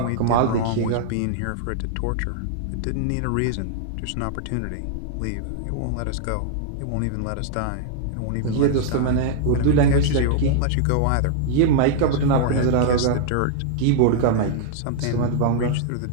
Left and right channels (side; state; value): both; different; correlation -0.01